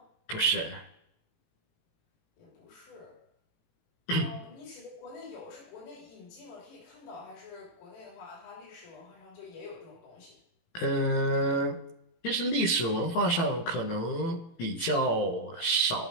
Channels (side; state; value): right; late; 18 ms